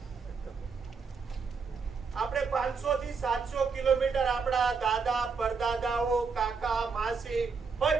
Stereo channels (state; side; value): quieter; left; 5.2 dB